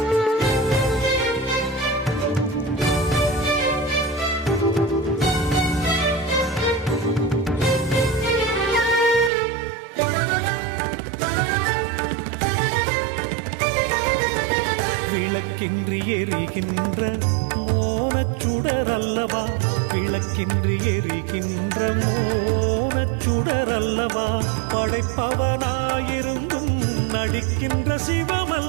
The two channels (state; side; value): drops out; left; at 9.3 s